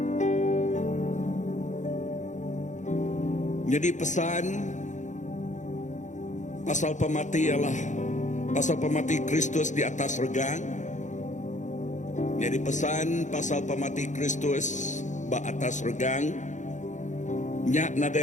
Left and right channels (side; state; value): right; late; 0.35 ms